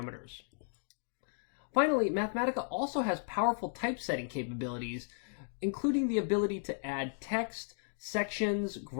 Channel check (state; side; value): silent; right; digital silence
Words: Finally, Mathematica also has powerful typesetting capabilities, including the ability to add text, sections,